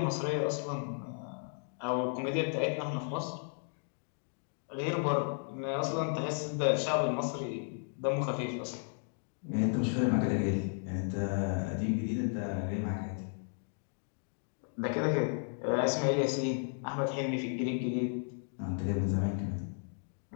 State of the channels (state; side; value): silent; right; 55 dB below the other